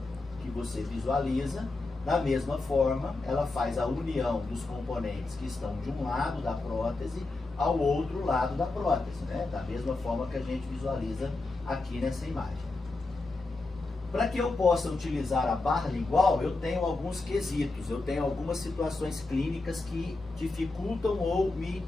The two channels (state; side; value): quieter; right; 3.3 dB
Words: que você visualiza. Da mesma forma, ela faz a união dos componentes que estão de um lado da prótese ao outro lado da prótese, né? Da mesma forma que a gente visualiza aqui nessa imagem. Para que eu possa utilizar a barra lingual, eu tenho alguns quesitos, eu tenho algumas situações clínicas que dificultam ou me